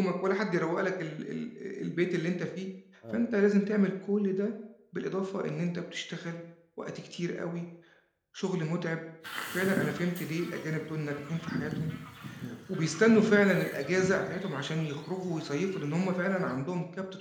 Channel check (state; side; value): identical; both; correlation 1.00